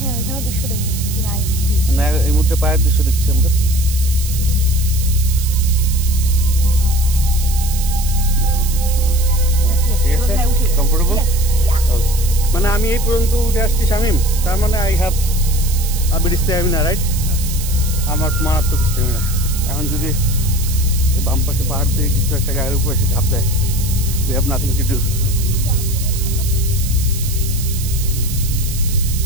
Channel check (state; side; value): noise; right; hiss, 9 dB below the sound